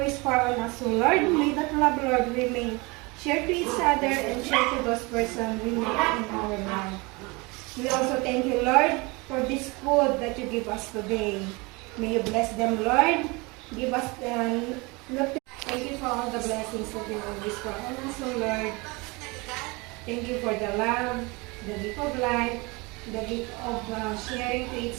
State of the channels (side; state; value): left; quieter; 26.2 dB